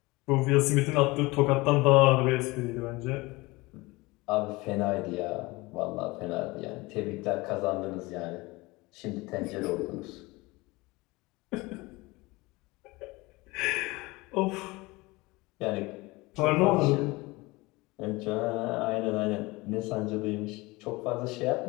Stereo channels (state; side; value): quieter; right; 22.6 dB